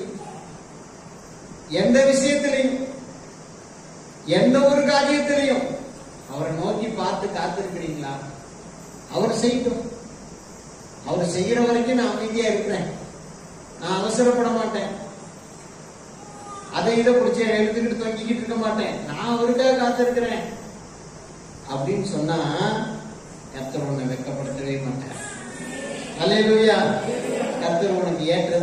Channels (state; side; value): identical; both; correlation 1.00